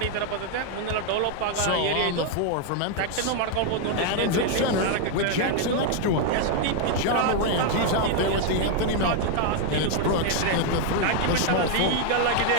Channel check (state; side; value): different; both; correlation 0.00